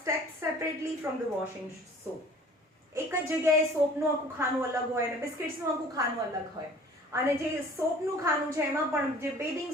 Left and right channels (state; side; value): normal; both; correlation 0.49